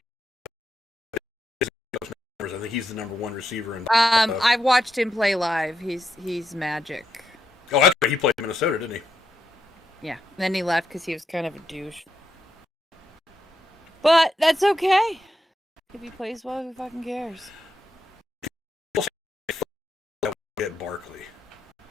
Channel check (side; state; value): both; normal; correlation 0.82